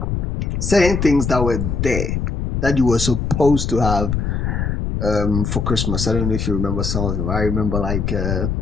certain things that were there that you were supposed to have for Christmas. I don't know if you remember some of them. I remember like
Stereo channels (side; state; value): left; noise; rumble, 1 dB below the sound